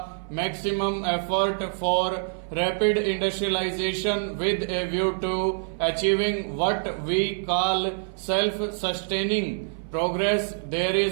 maximum effort for rapid industrialization with a view to achieving what we call self-sustaining progress. There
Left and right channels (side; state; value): left; silent; 58 dB below the other